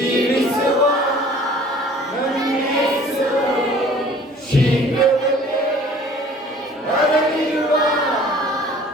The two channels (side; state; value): both; normal; correlation 0.50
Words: ನನ್ನೇಸು ಶೀಘ್ರದಲ್ಲೇ ಬರಲಿರುವ,